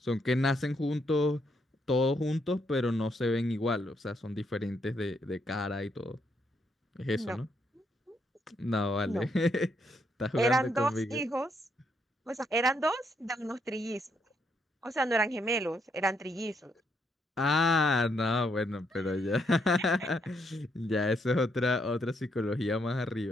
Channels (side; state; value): both; normal; correlation 0.75